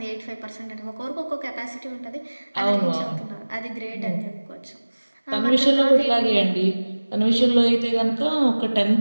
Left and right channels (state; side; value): inverted; both; correlation -1.00